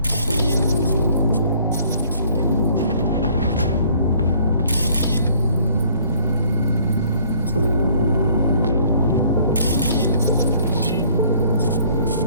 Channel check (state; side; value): inverted; both; correlation -0.58